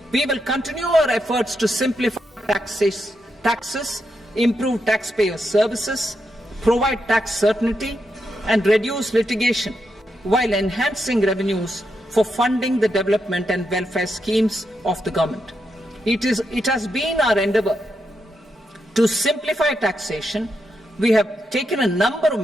We will continue our efforts to simplify taxes, improve taxpayer services, provide tax certainty, and reduce litigation while enhancing revenues for funding the development and welfare schemes of the government. It has been our endeavour to simplify taxation. We have taken a number of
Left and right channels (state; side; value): normal; both; correlation 0.84